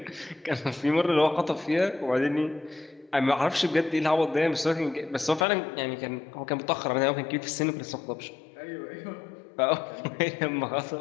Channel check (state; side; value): drops out; right; at 5.5 s